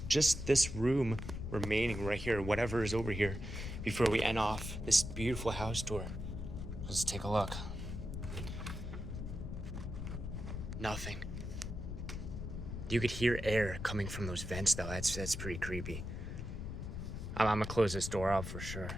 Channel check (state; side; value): noise; left; rumble, 6 dB below the sound